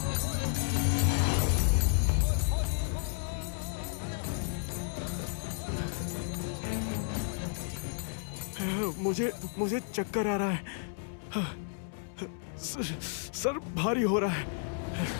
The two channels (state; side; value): silent; right; digital silence